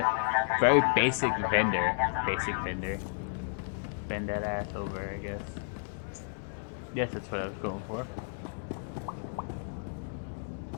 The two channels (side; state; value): right; silent; digital silence